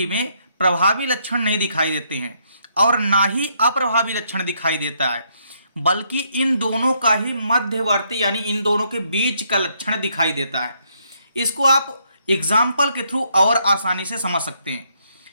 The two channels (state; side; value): inverted; both; correlation -0.73